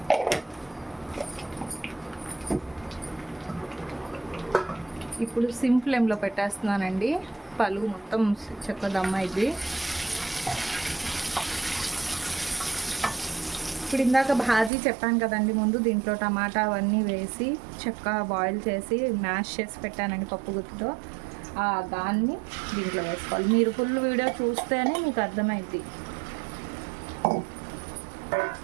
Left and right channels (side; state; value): left; drops out; at 14.7 s